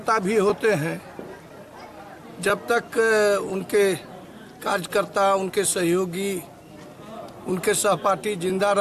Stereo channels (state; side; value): identical; both; correlation 1.00